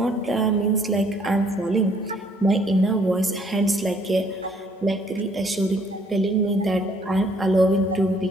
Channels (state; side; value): normal; both; correlation 0.63